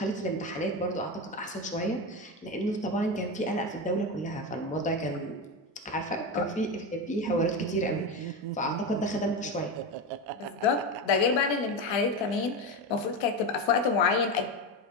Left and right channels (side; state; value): both; normal; correlation 0.18